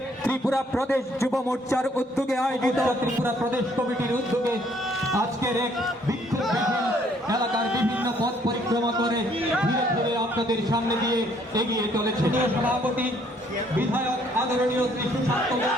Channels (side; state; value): both; normal; correlation 0.64